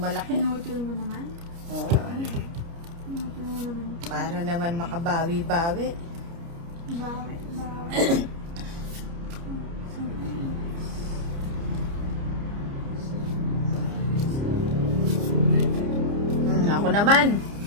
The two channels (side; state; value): left; late; 29 ms